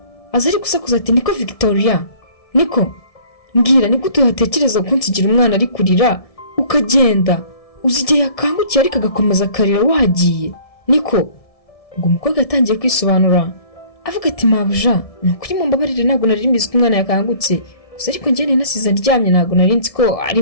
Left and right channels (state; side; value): late; right; 1.6 ms